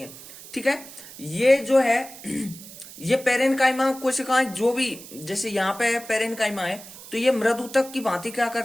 हैं। ठीक है, ये जो है ये पेरेन्काइमा कोशिकाएं जो भी, जैसे यहाँ पे पेरेन्काइमा है, तो ये मृदुतक की भांति क्या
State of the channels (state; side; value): noise; right; hiss, 16 dB below the sound